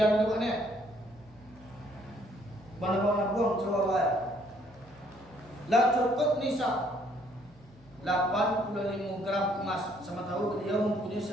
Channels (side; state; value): both; normal; correlation 0.65